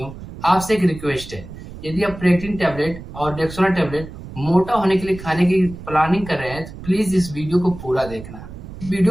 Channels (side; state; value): right; noise; rumble, 13 dB below the sound